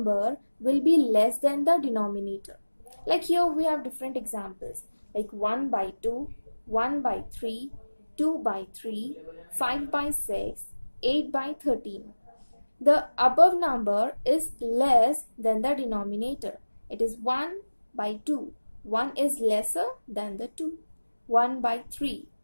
will be less than the denominator. Like here we have different examples, like 1 by 2, 1 by 3, 2 by 3, 5 by 6, 8 by 13. The above number is less than the denominator. It is 1 by 2. 1 is lesser than the 2. 1 by 3.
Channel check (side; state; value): both; inverted; correlation -1.00